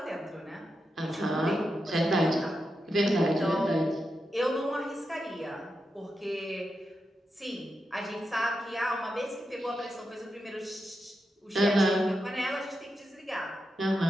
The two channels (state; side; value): normal; both; correlation 0.87